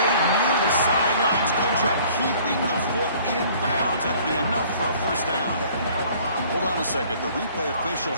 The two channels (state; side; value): inverted; both; correlation -0.54